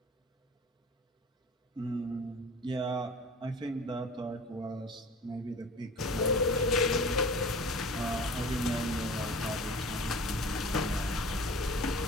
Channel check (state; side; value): normal; both; correlation 0.40